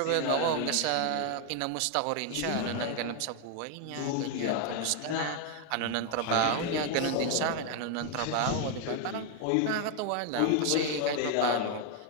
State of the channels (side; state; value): both; different; correlation 0.01